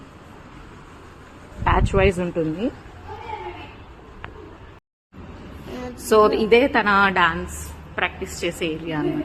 batch wise ఉంటుంది. సో ఇదే తన డాన్స్ ప్రాక్టీస్ చేసే ఏరియా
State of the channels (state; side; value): identical; both; correlation 1.00